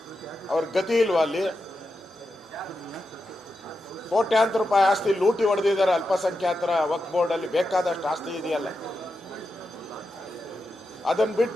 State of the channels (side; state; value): both; normal; correlation 0.88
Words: ಅವ್ರ ಗತಿ ಇಲ್ವಾ? ಅಲ್ಲಿ ಕೋಟ್ಯಾಂತರ ರೂಪಾಯಿ ಆಸ್ತಿ ಲೂಟಿ ಹೊಡೆದಿದ್ದಾರೆ. ಅಲ್ಪಸಂಖ್ಯಾತರ ವಕ್ಫ್ ಬೋರ್ಡಲ್ಲಿ ಬೇಕಾದಷ್ಟು ಆಸ್ತಿ ಇದೆಯಲ್ಲ. ಅದನ್ನು